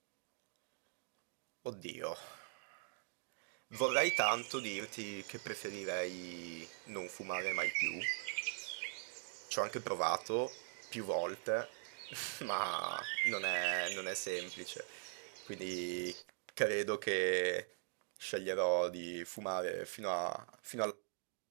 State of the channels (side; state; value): left; silent; digital silence